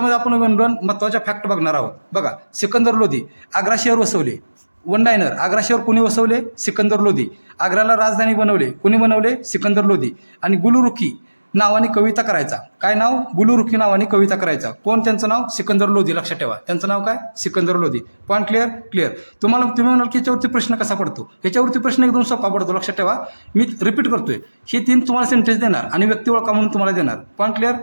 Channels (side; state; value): both; inverted; correlation -1.00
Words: आपण दोन महत्त्वाच्या फॅक्ट बघणार आहोत. बघा, सिकंदर लोधी आग्रा शहर वसवले. वन लाईनर, आग्रा शहर कुणी वसवले? सिकंदर लोधी. आग्राला राजधानी बनवले, कुणी बनवले? सिकंदर लोधी. आणि गुलरुखी नावाने कविता करायचा. काय नाव? गुलरुखी नावाने कविता करायचा. कोण त्यांचं नाव? सिकंदर लोधी, लक्षात ठेवा. त्यांचं नाव काय? Sikandar Lodhi. Point clear? Clear. तुम्ही म्हणाल की याच्यावरती प्रश्न कसा पडतो? याच्यावरती प्रश्न एकदम सोपा पडतो, लक्षात ठेवा. मी रिपीट करतोय, हे 3 तुम्हाला सेंटेन्स देणार आणि व्यक्ती ओळखा म्हणून तुम्हाला देणार. Point clear?